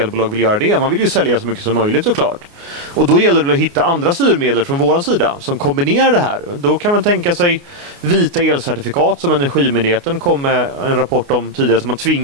vill göra det? Man vill ju sälja så mycket som möjligt såklart. Och då gäller det att hitta andra styrmedel från vår sida som kombinerar det här. Då kan man tänka sig vita elcertifikat som Energimyndigheten kom med en rapport om tidigare, som man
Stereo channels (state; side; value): late; left; 29 ms